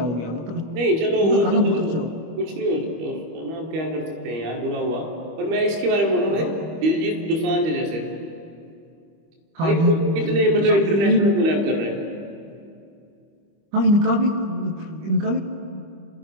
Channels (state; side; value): late; left; 25 ms